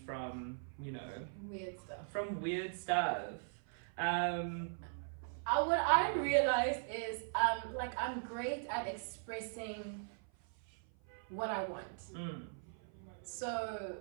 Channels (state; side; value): silent; left; 51 dB below the other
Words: weird stuff. What I realized is I'm great at expressing what I want. So